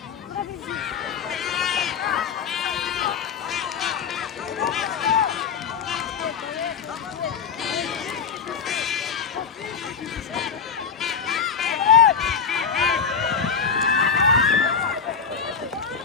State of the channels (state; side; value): quieter; right; 6.4 dB